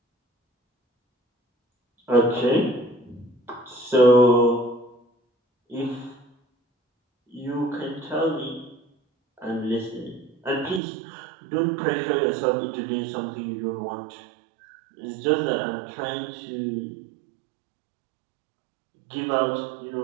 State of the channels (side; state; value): left; drops out; at 10.8 s